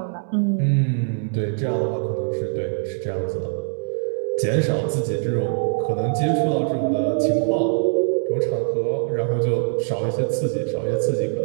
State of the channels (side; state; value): left; silent; 64 dB below the other